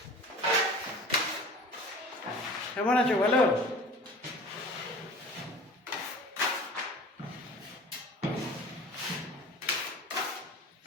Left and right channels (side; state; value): both; normal; correlation 0.42